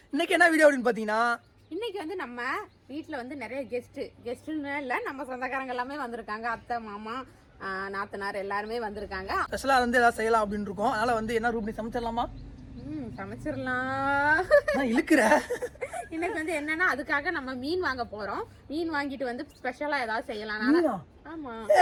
இன்னைக்கு என்ன video அப்படினு பாத்தீங்கன்னா, இன்னைக்கு வந்து நம்ம வீட்ல வந்து நிறைய கெஸ்ட்னு இல்ல, நம்ம சொந்தக்காரங்க எல்லாமே வந்திருக்காங்க. அத்தை, மாமா, நாத்தனார் எல்லாருமே வந்திருக்காங்க. ஸ்பெஷலா வந்து ஏதாவது செய்யலாம் அப்படின்னு இருக்கோம். அதனால வந்து என்ன ரூபி சமைச்சிடலாமா? சமைச்சிடலாம். இழுக்கிற இன்னைக்கு வந்து என்னன்னா, அதுக்காக நம்ம மீன் வாங்க போறோம். மீன் வாங்கிட்டு வந்து ஸ்பெஷலா ஏதாவது செய்யலாம். ஆமா,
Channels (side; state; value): both; identical; correlation 1.00